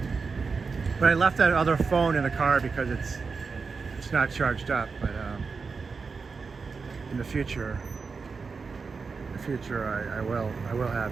But I left that other phone in the car because it's not charged up. But in the future, I will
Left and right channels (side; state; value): left; quieter; 4.9 dB